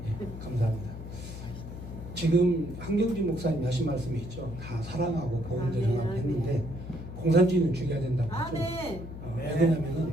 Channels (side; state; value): left; noise; hum, 10 dB below the sound